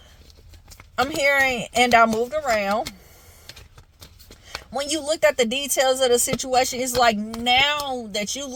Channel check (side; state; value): both; identical; correlation 1.00